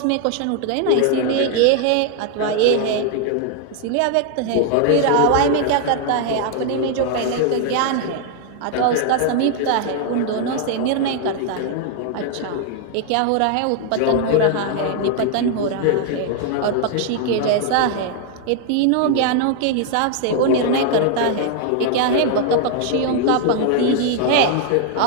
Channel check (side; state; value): both; different; correlation 0.00